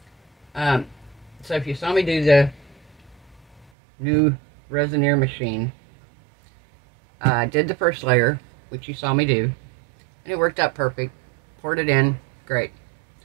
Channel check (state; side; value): drops out; left; at 3.7 s